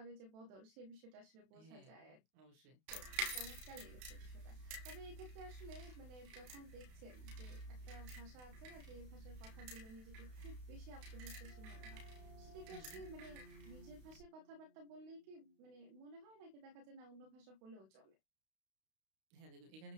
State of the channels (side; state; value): left; late; 32 ms